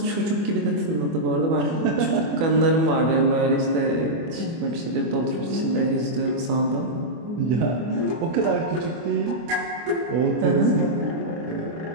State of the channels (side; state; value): left; late; 24 ms